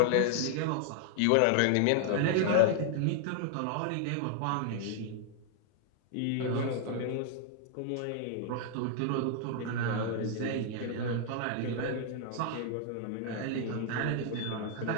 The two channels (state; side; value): different; both; correlation 0.00